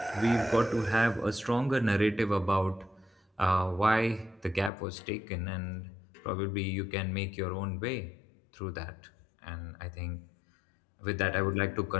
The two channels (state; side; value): drops out; right; at 4.7 s